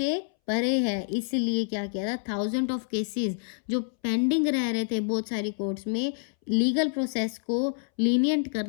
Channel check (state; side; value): silent; right; 60 dB below the other